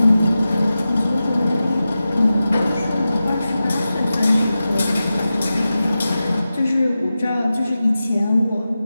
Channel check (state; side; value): inverted; both; correlation -0.93